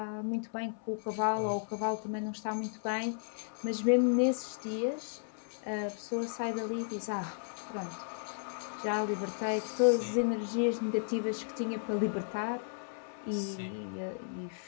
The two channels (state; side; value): silent; right; 55 dB below the other